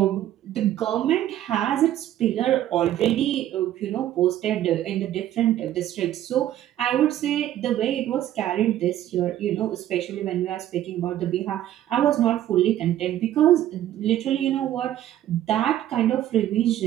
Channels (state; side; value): quieter; left; 12.4 dB